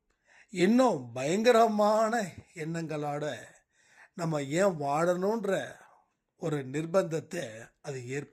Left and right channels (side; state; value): both; identical; correlation 1.00